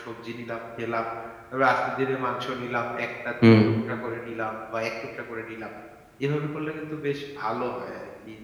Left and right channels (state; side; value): identical; both; correlation 1.00